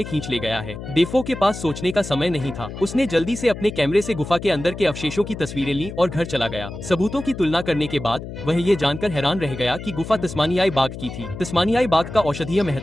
खींच ले गया है। डेफो के पास सोचने का समय नहीं था। उसने जल्दी से अपने कैमरे से गुफा के अंदर के अवशेषों की तस्वीरें ली और घर चला गया। सबूतों की तुलना करने के बाद वह ये जानकर हैरान रह गया कि गुफा तस्मानियाई बाघ की थी। तस्मानियाई बाघ का औषधीय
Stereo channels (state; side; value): noise; left; hum, 10 dB below the sound